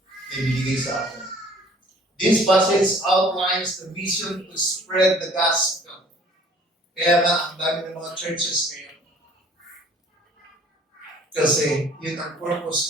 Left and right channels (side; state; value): both; normal; correlation 0.54